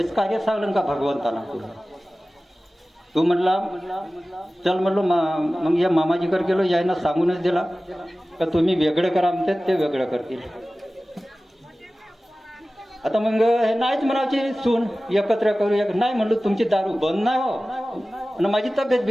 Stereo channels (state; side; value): normal; both; correlation 0.97